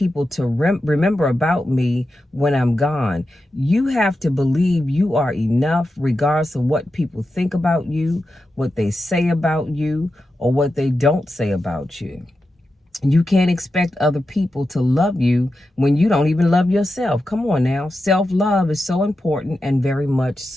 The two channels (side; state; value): both; normal; correlation 0.90